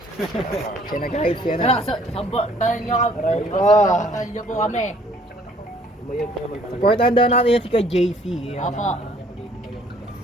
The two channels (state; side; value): normal; both; correlation 0.60